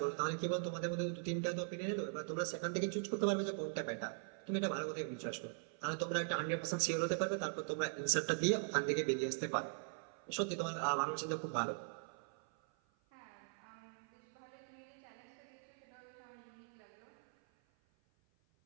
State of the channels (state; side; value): silent; left; 50 dB below the other